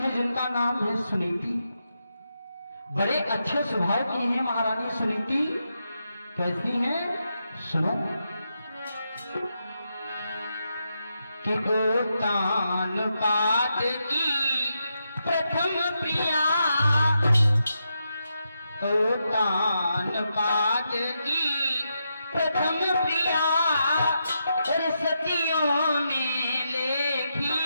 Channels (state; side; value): inverted; both; correlation -0.84